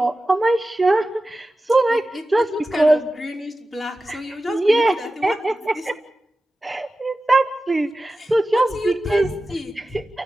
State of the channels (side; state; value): both; normal; correlation 0.94